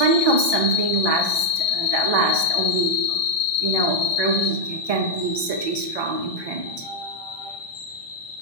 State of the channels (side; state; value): right; late; 1.2 ms